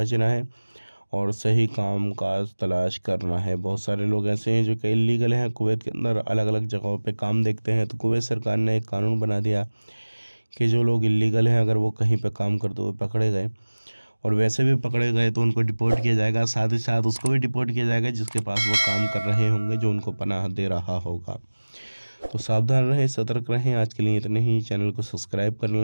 है और सही काम काज तलाश करना है। बहुत सारे लोग ऐसे हैं जो कि इलीगल हैं, कुवैत के अंदर अलग अलग जगहों पे काम देखते हैं। तो कुवैत सरकार ने एक कानून बना दिया कि जो लोग इलीगल हैं, अगर वो कहीं पे काम करते हुए पकड़े गए, और वैसे भी पकड़े गए, तो उनको डिपोर्ट किया जाएगा। साथ ही साथ उसको भी डिपोर्ट किया जाएगा जिसके पास वो काम कर रहे होंगे, जो उनको पनाह दे रहा होगा। तो सावधान रहें, सतर्क रहें। आज के लिए इतने ही। चैनल को सब्सक्राइब कर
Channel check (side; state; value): both; inverted; correlation -1.00